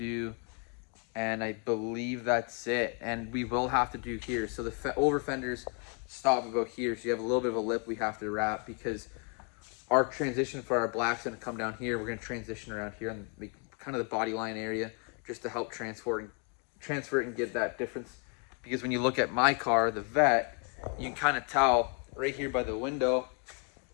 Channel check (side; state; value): right; quieter; 36.9 dB